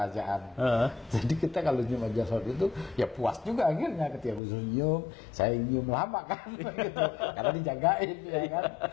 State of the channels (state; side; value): drops out; right; at 4.4 s